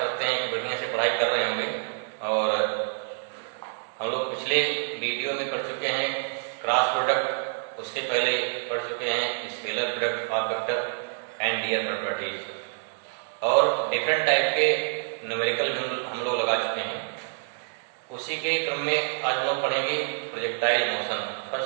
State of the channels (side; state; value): left; silent; 60 dB below the other